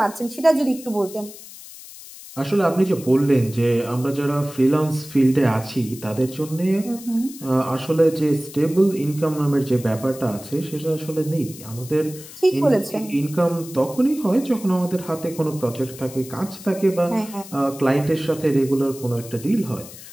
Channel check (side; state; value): left; noise; hiss, 16 dB below the sound